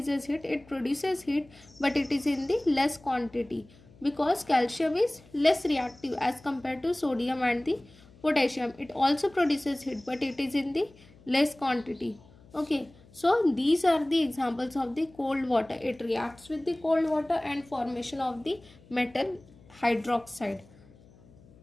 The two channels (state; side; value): noise; left; hum, 25 dB below the sound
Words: heat, it produces heat, but it is in the less quantity, because calcium is less reactive as compared to sodium and the potassium. It also produces heat, but it is in the less quantity. Okay, so these are the examples of the cold water. It reacts with the cold water and formation of the metal hydroxide.